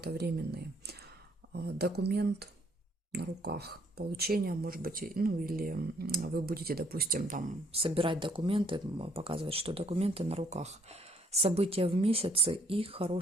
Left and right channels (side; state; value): both; normal; correlation 0.65